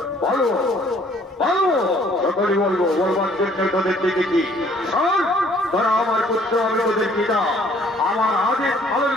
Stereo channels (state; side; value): normal; both; correlation 0.60